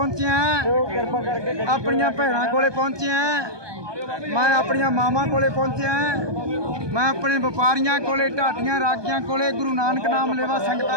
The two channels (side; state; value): left; late; 1.2 ms